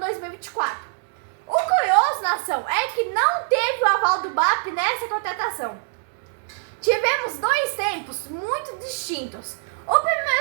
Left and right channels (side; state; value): left; silent; digital silence